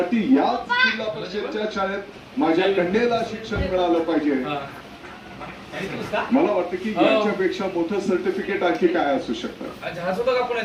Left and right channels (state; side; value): identical; both; correlation 1.00